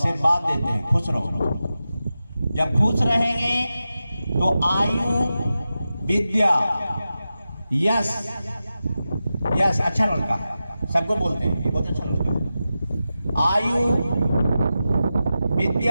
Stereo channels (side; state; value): both; inverted; correlation -0.92